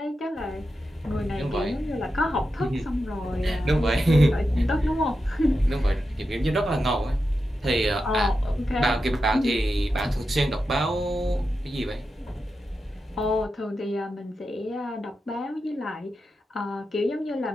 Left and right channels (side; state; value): both; normal; correlation 0.89